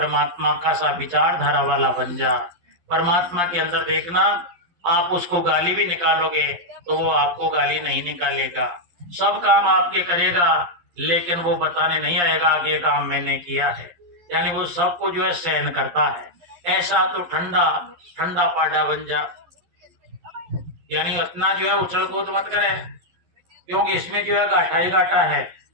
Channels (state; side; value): late; left; 11 ms